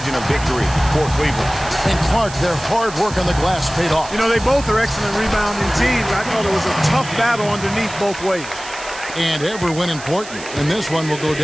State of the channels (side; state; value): right; noise; hiss, 14 dB below the sound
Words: of victory for Cleveland. And Clark, their hard work on the glass paid off. You know, they both are excellent rebounding teams. I thought it was a tough battle underneath both ways. And every win important. And this one will go